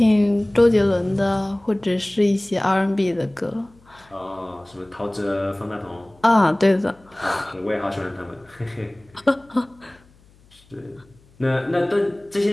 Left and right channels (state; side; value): noise; left; hum, 29 dB below the sound